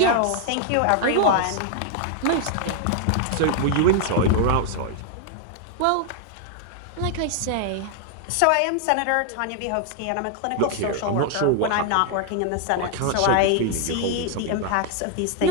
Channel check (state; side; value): different; both; correlation 0.00